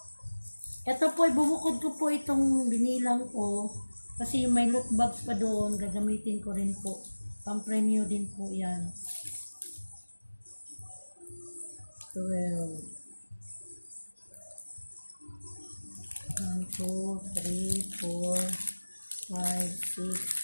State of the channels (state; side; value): inverted; both; correlation -1.00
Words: Ito po, bubukod ko po itong binilang ko. Kasi may loot bags pa doon. Gagamitin ko rin po. Pang-premyo din po yan. 12. 1, 2, 3, 4, 5, 6,